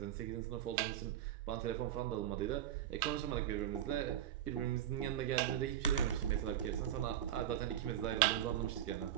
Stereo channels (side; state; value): left; quieter; 11.2 dB